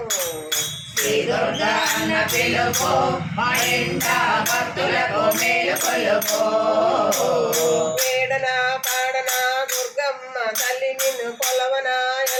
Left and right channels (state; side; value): identical; both; correlation 1.00